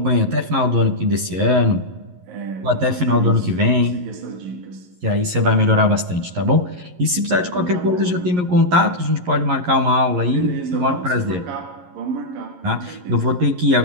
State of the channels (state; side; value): late; left; 11 ms